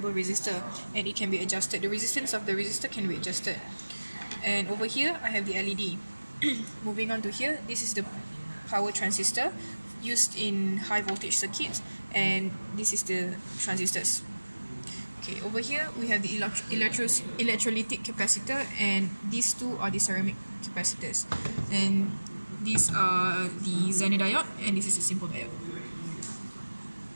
resistor, and it can be adjusted. The resistance of the resistor can be adjusted. And over here I have the LED. Moving on to here, this is the power transistor used in high voltage circuits, and this is the transistors. Okay, over here we have the electrolytic capacitor, and these two are the ceramic capacitors, and these are the Zener diode, and this is a simple diode.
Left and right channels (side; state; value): both; inverted; correlation -1.00